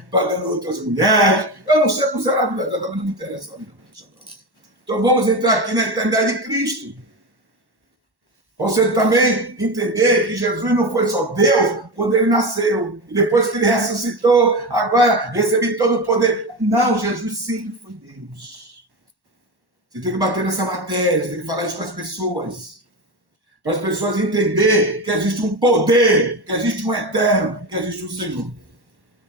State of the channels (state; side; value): late; left; 1.1 ms